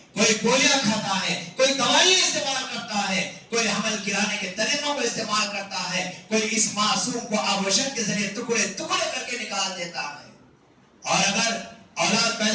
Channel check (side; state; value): both; identical; correlation 1.00